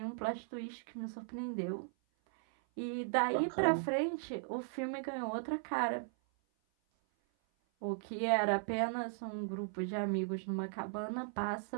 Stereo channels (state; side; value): silent; left; 53 dB below the other